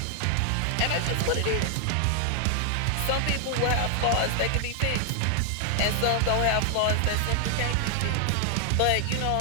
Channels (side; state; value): both; different; correlation 0.00